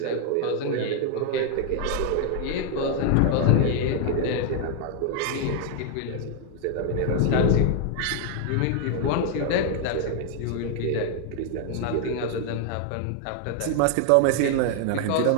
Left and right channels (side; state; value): both; different; correlation 0.00